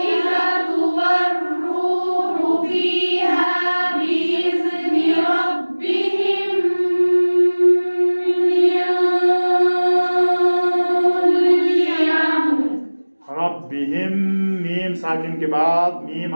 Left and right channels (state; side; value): inverted; both; correlation -1.00